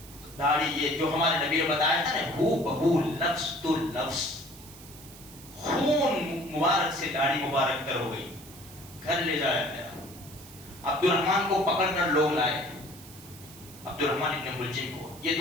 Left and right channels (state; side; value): noise; right; hiss, 18 dB below the sound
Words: داڑھی, یہ جو ہمارے نبی نے بتایا تھا نا, ہو بہو لفظ تو لفظ, خون مبارک سے داڑھی مبارک تر ہو گئی. گھر لے جایا گیا, عبد الرحمن کو پکڑ کر لوگ لائے, عبد الرحمن ابن ملجم کو, یہ